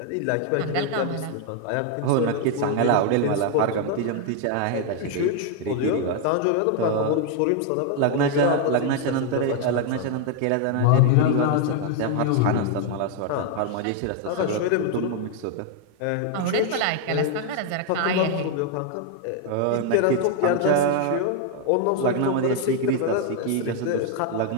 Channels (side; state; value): both; different; correlation 0.00